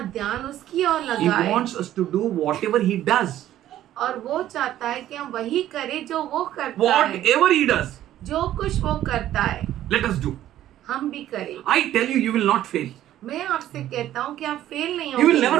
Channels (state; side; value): quieter; left; 12.7 dB